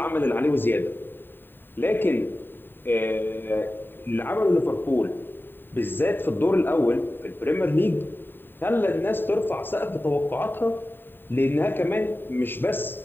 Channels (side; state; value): right; late; 0.095 ms